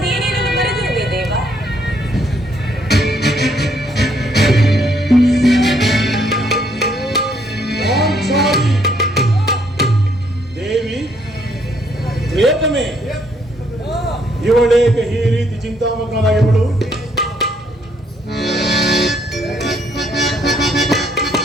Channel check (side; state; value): both; normal; correlation 0.69